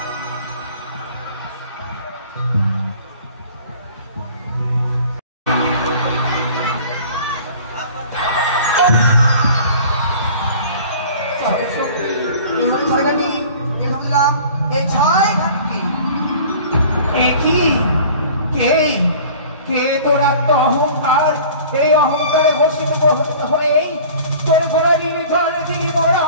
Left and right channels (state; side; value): inverted; both; correlation -0.46